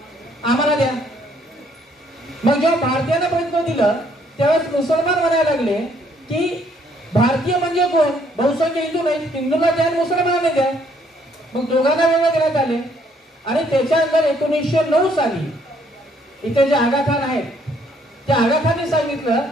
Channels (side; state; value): both; normal; correlation 0.66